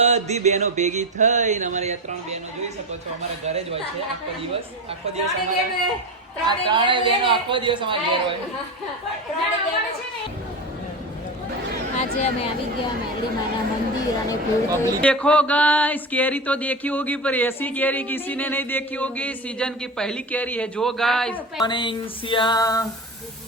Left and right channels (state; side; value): normal; both; correlation 0.24